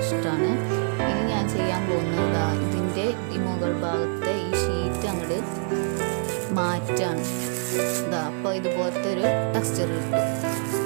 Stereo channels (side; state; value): left; silent; digital silence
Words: ഇഷ്ടമാണ്. ഇനി ഞാൻ ചെയ്യാൻ പോകുന്നത് ഇതിൻ്റെ ഈ മുകൾ ഭാഗത്തെ ഈ ഷീറ്റ് അങ്ങോട്ട് മാറ്റാണ്. അപ്പോൾ ഇതുപോലത്തെ ഒരു ടെക്സ്ചർ